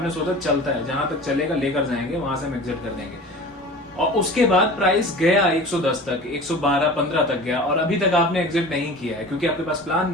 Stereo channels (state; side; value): normal; both; correlation 0.38